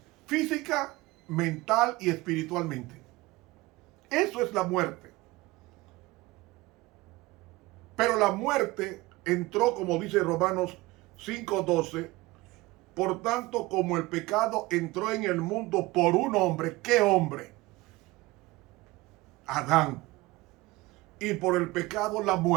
física, mental y espiritualmente. Eso es la muerte. Pero la muerte entró, como dice Romanos 5:12, por tanto, como el pecado entró en el mundo por un hombre, ¿qué hombre? Adán. Y por el pecado la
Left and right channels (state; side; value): quieter; left; 20.6 dB